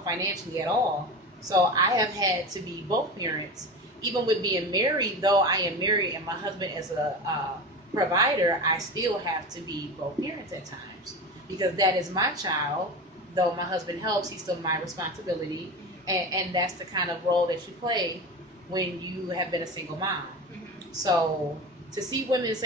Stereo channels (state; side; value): normal; both; correlation 0.27